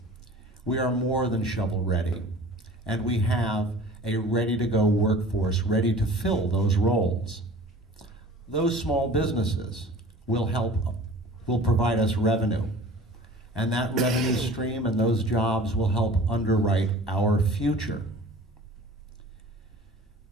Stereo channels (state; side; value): normal; both; correlation 0.43